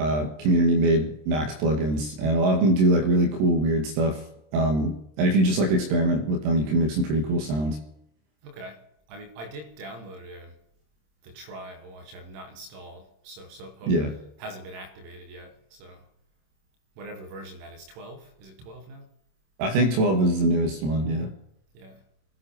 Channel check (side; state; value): left; late; 26 ms